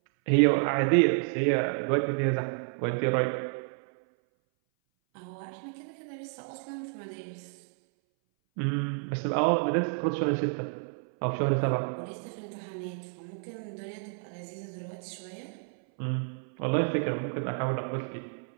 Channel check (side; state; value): left; silent; 58 dB below the other